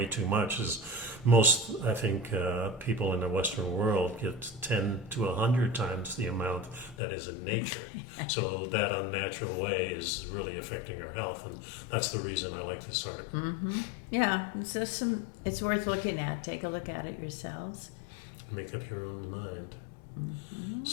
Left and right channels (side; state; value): right; drops out; at 7.0 s